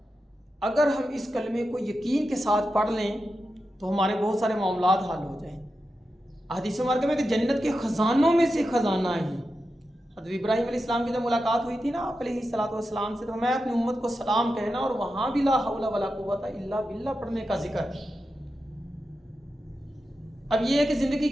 अगर हम इस कलमे को यकीन के साथ पढ़ लें तो हमारे बहुत सारे मामलात हल हो जाएं। हदीस मुबारक में कि जन्नत के ख़जानों में से ख़जाना है। हज़रत इब्राहीम अलैहिस्सलाम की जब मुलाकात हुई थी ना आप अलैहिस्सलातु वस्सलाम से, तो मैं अपनी उम्मत को सलाम कहना और वहाँ भी ला हौला वला कुव्वता इल्ला बिल्लाह पढ़ने का जिक्र है। अब ये है कि ज़िंदगी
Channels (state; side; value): normal; both; correlation 0.90